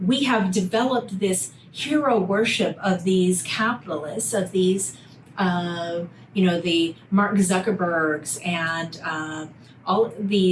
we have developed this hero worship of these capitalists, of these, the Mark Zuckerbergs and all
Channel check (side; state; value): both; identical; correlation 1.00